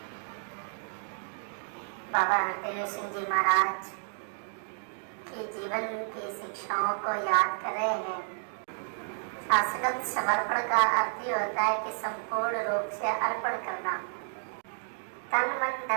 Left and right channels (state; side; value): silent; left; 57 dB below the other